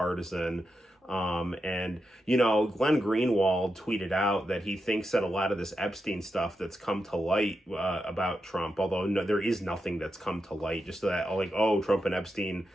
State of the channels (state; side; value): normal; both; correlation 0.87